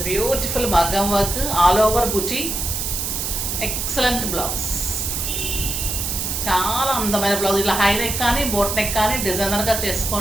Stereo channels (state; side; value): noise; right; hiss, 2 dB below the sound